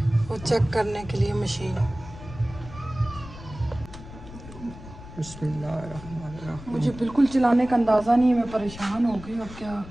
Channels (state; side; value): noise; left; rumble, 15 dB below the sound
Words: वो चेक करने के लिए मशीन। बिस्मिल्लाहिर्रहमानिर्रहीम। मुझे बिल्कुल चलाने का अंदाज़ा नहीं है, मैं परेशान हो गई और क्या